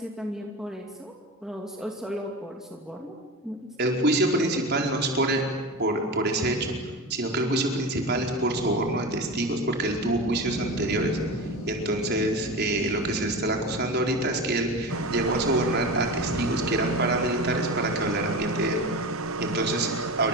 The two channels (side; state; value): both; normal; correlation 0.27